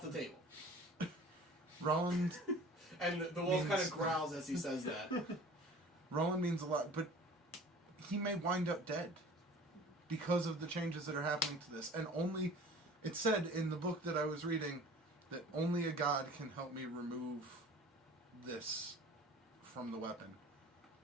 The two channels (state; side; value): normal; both; correlation 0.44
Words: the table. Roland And the wolf kind Means- of growls as he says that. Roland means a lot, but he may wind up dead because of the changes that are happening to this. And only, it said in the book that I was reading that only a god can help me remove this from the weapon.